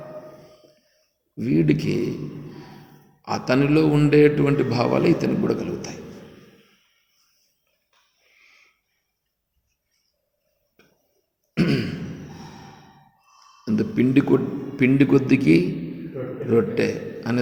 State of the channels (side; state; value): both; identical; correlation 1.00